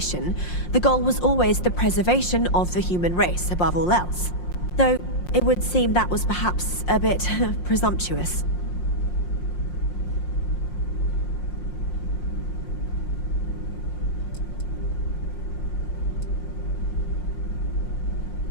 The goal was always the preservation of the human race above all else. Though, it would seem that was perhaps a bit presumptuous.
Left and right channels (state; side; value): late; right; 5.6 ms